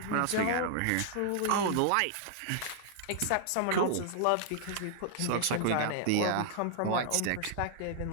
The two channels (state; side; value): different; both; correlation -0.01